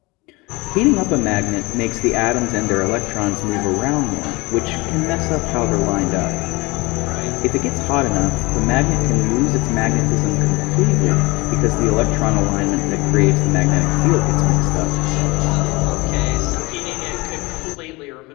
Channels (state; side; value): quieter; right; 24.1 dB